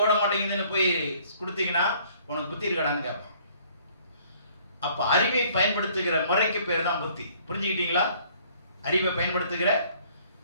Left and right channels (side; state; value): both; inverted; correlation -0.58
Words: ஓட மாட்டேங்குதுன்னு போய் கொடுத்தீங்கன்னா உனக்கு புத்தி இருக்கடான்னு கேட்பான். அப்போ அறிவை பயன்படுத்துகிற முறைக்கு பேர் தான் புத்தி. புரிஞ்சுக்கிட்டீங்களா? அறிவை பயன்படுத்துகிற